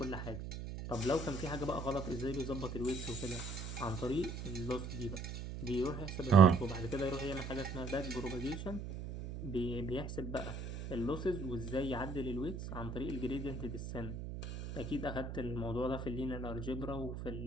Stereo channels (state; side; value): noise; right; hum, 7 dB below the sound